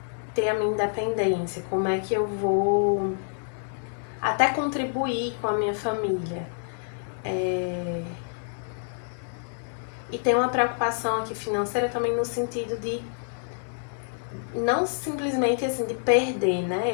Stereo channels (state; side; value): silent; right; digital silence